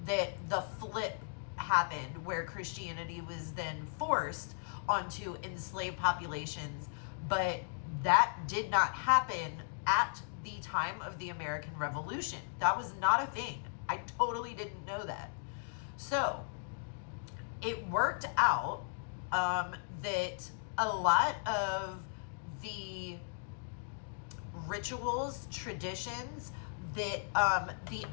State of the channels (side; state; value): right; silent; digital silence